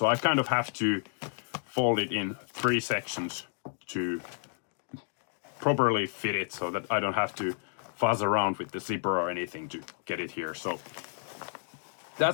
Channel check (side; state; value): right; silent; digital silence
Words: I kind of have to fold it in 3 sections to properly fit it so that I don't have to fuzz around with the zipper or anything to get it here. So